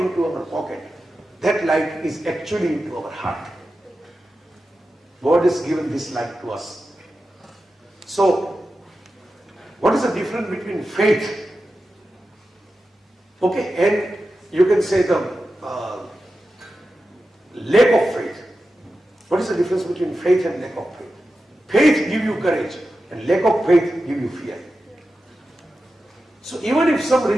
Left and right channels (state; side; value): normal; both; correlation 0.92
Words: our pocket. That light is actually into our heart. God has given this light to us. So, what is the difference between faith? Okay, and you can say the lack of faith. What is the difference between faith and lack of faith? Faith gives you courage and lack of faith gives you fear. So even if some